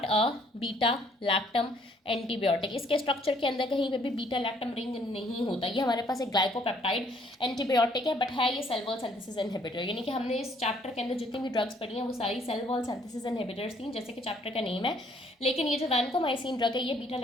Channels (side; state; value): both; normal; correlation 0.64